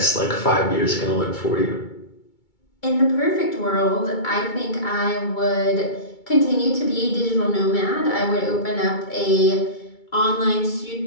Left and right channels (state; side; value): late; right; 2.2 ms